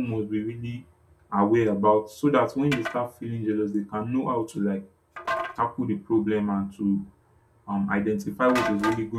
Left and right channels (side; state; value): both; identical; correlation 1.00